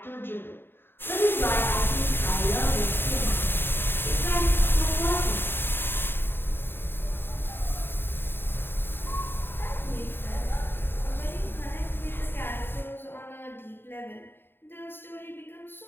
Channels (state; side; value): late; right; 0.10 ms